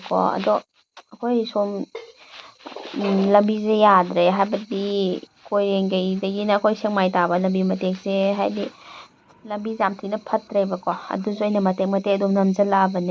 ꯑꯗꯣ ꯑꯩꯈꯣꯏ ꯁꯣꯝ ꯂꯝꯕꯤꯁꯦ ꯌꯥꯗ꯭ꯔꯦ ꯍꯥꯏꯕꯗꯤ ꯀꯣꯏꯔꯦꯡꯒꯩꯗꯒꯤꯅ ꯑꯩꯈꯣꯏ ꯁꯦꯛꯃꯥꯏ ꯇꯥꯕ ꯂꯝꯕꯤ ꯃꯇꯦꯛꯁꯦ ꯍꯥꯏꯗꯤ ꯂꯝꯕꯤꯁꯦ ꯌꯥꯝ ꯊꯤꯅ ꯐꯠꯇ꯭ꯔꯦꯕꯀꯣ ꯑꯗꯨꯁꯨ ꯑꯩꯅ ꯃꯇꯦꯛ ꯃꯇꯦꯛ ꯑꯗꯨꯝ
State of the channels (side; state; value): both; identical; correlation 1.00